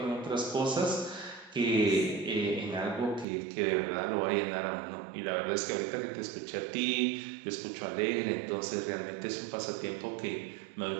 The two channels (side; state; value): left; drops out; at 3.2 s